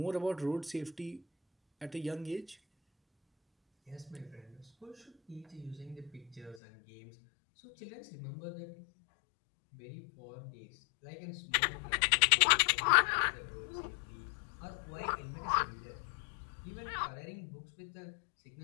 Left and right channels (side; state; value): right; drops out; at 6.6 s